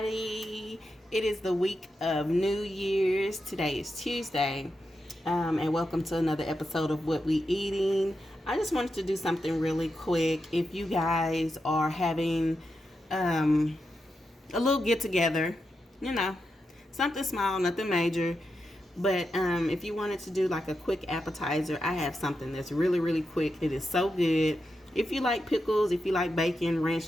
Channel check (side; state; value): both; normal; correlation 0.87